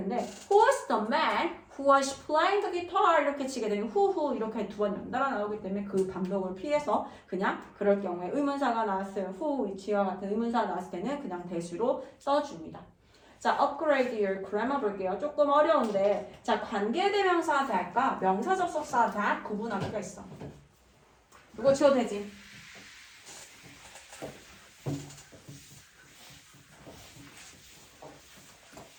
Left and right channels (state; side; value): identical; both; correlation 1.00